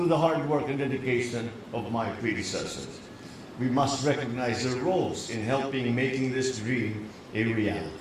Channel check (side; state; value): both; identical; correlation 1.00